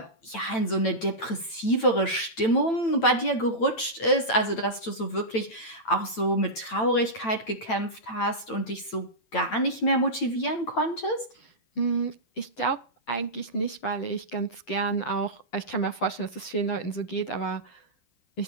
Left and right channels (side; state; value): right; late; 9.0 ms